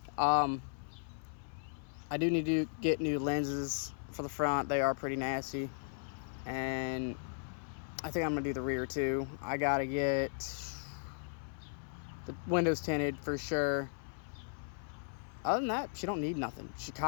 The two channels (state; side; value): silent; right; 53 dB below the other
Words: I do need to get new lenses for the front. They are pretty nasty, and I think I'm gonna do the rear too. I gotta get the windows tinted for sure. Other than that, she don't need nothing. She